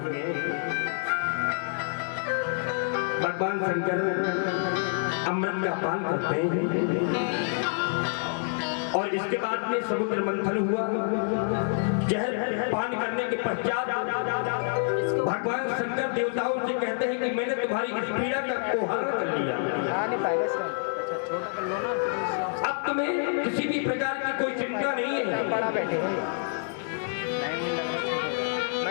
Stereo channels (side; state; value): right; silent; digital silence